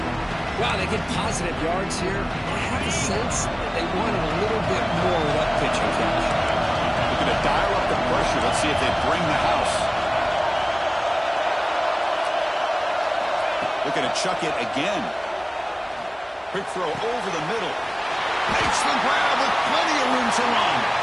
Wow, they get positive yards here. I have a sense that they wanted a little bit more of that pitching catch. Looking to dial up the pressure. Let's see if they bring the house. Looking to chuck it again. Quick throw over the middle. Makes the grab with plenty of room to run.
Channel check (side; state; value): both; identical; correlation 1.00